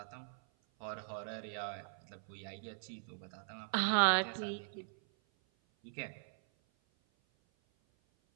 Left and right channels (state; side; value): silent; left; 51 dB below the other